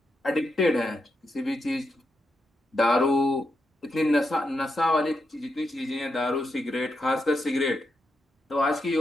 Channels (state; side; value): normal; both; correlation 0.84